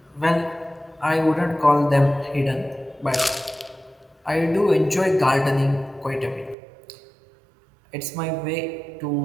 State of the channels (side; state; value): left; drops out; at 6.6 s